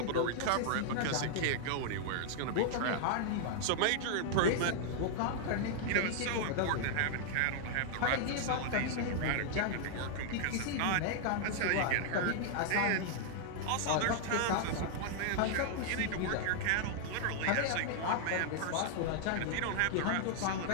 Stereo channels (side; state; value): both; different; correlation 0.00